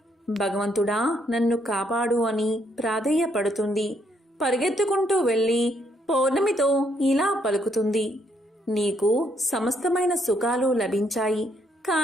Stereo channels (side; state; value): both; normal; correlation 0.72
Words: భగవంతుడా నన్ను కాపాడు అని ప్రాధేయపడుతుంది. పరిగెత్తుకుంటూ వెళ్ళి పౌర్ణమితో ఇలా పలుకుతుంది, నీకు సమస్తమైన సుఖాలు లభించాయి,